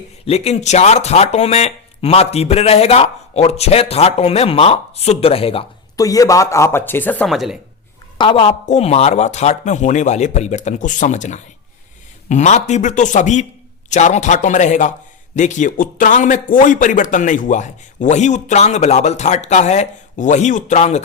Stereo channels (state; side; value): quieter; right; 5.5 dB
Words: लेकिन 4 थाटों में मां तीव्र रहेगा और 6 थाटों में मां शुद्ध रहेगा। तो ये बात आप अच्छे से समझ लें। अब आपको मारवा थाट में होने वाले परिवर्तन को समझना है। मां तीव्र तो सभी चारों थाटों में रहेगा। देखिए, उत्तरांग में कोई परिवर्तन नहीं हुआ है, वही उत्तरांग बिलावल थाट का है, वही उत्तरांग